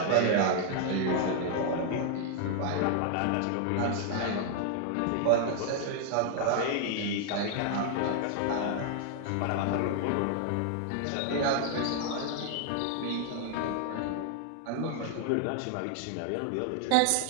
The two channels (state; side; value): different; both; correlation 0.00